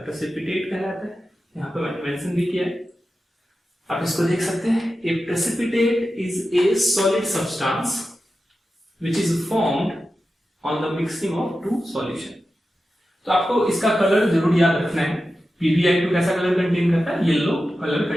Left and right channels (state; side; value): normal; both; correlation 0.92